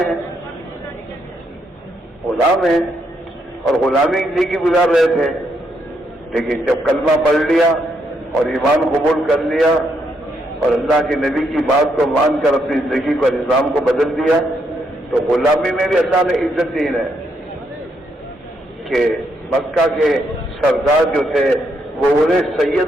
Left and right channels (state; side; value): normal; both; correlation 0.77